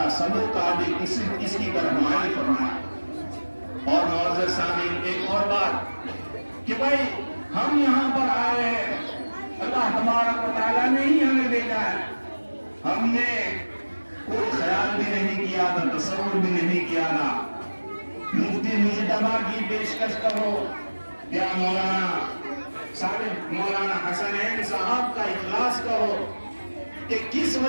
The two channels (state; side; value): inverted; both; correlation -1.00